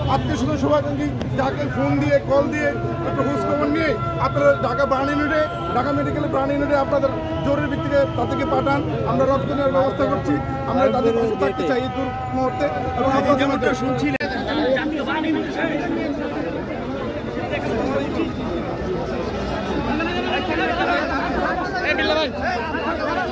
আত্মীয় স্বজন শুভাকাঙ্ক্ষী যাকে ফোন দিয়ে কল দিয়ে একটু খোঁজ খবর নিয়ে আপনারা ঢাকা মেডিকেলে প্রাণ ইউনিটে আপনাদের জরুরি ভিত্তিতে তাদেরকে পাঠান। আমরা রক্ত নেওয়ার ব্যবস্থা করছি, আমরা তাদের পাশে থাকতে চাই এই মুহূর্তে। এবং আপনাদের শুনছিলেন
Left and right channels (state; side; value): identical; both; correlation 1.00